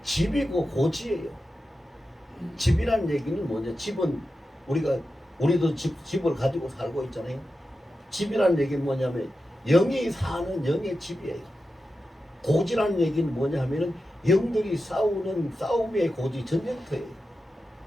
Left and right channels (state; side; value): normal; both; correlation 0.91